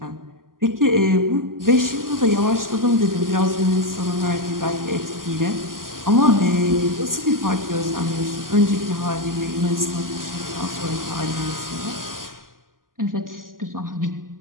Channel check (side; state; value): left; late; 0.91 ms